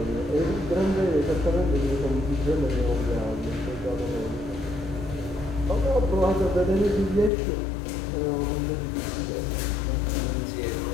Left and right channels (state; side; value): drops out; right; at 7.3 s